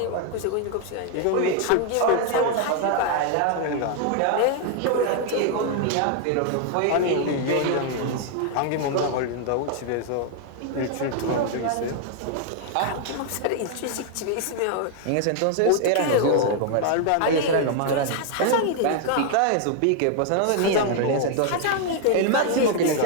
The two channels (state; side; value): different; both; correlation 0.00